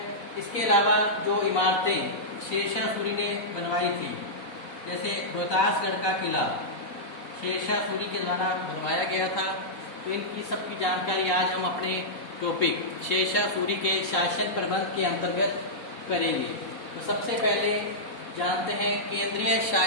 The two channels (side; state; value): right; late; 4.1 ms